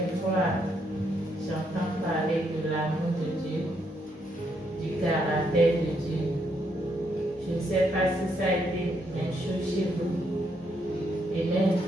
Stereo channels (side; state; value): both; normal; correlation 0.75